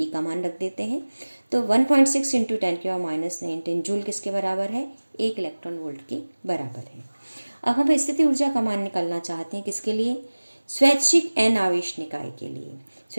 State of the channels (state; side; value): inverted; both; correlation -1.00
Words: का मान रख देते हैं, तो 1.6 × 10⁻⁻19 जूल किसके बराबर है, 1 इलेक्ट्रॉन वोल्ट के बराबर है। अब हम स्थितिज ऊर्जा का मान निकालना चाहते हैं किसके लिए, स्वैच्छिक N आवेश निकाय के लिए।